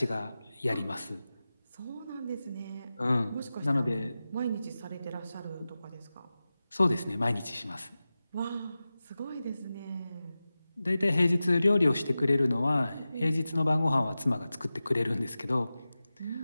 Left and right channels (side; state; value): both; inverted; correlation -0.95